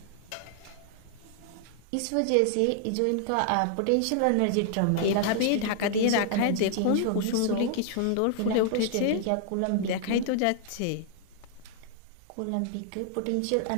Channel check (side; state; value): both; different; correlation 0.00